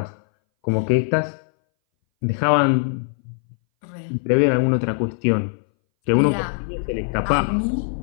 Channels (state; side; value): silent; right; 61 dB below the other